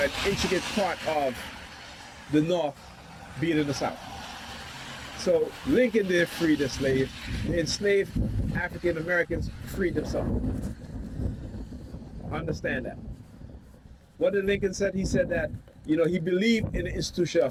intricate part of the North being in the South. So Lincoln didn't free the slave. The enslaved African Americans freed themselves. Understand that. What did Lincoln said? He said that, he believed in the institution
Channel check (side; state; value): both; identical; correlation 1.00